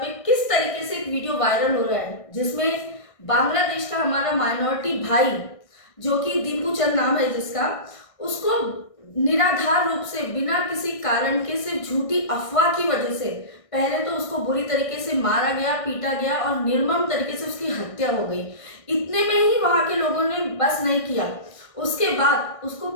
किस तरीके से एक वीडियो वायरल हो रहा है जिसमें बांग्लादेश का हमारा माइनॉरिटी भाई जो कि दीपू चंद नाम है जिसका, उसको निराधार रूप से बिना किसी कारण के सिर्फ झूठी अफवाह की वजह से पहले तो उसको बुरी तरीके से मारा गया, पीटा गया और निर्मम तरीके से उसकी हत्या हो गई। इतने में ही वहां के लोगों ने बस नहीं किया, उसके बाद उसको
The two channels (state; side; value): late; right; 1.6 ms